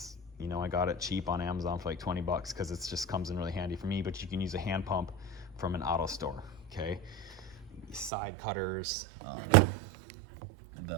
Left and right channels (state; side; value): drops out; left; at 8.1 s